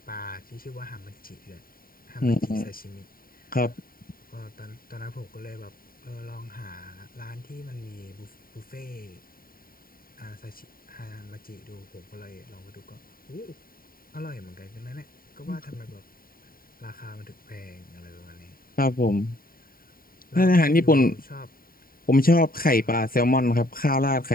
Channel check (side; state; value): right; late; 0.42 ms